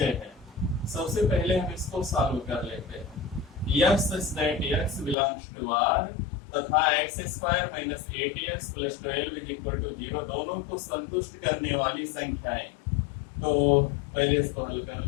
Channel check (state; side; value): drops out; right; at 5.2 s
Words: है। सबसे पहले हम इसको सॉल्व कर लेते हैं। x such that x belongs to R तथा x square minus 8x plus 12 is equal to 0 दोनों को संतुष्ट करने वाली संख्याएं। तो पहले इसको हल कर